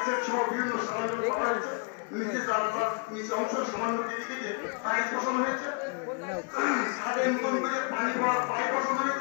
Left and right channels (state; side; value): quieter; right; 35.0 dB